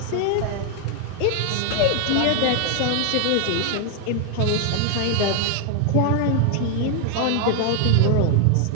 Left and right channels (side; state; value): both; different; correlation 0.00